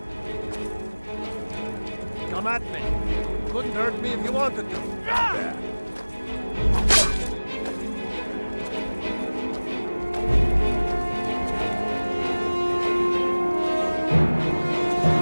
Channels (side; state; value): both; inverted; correlation -1.00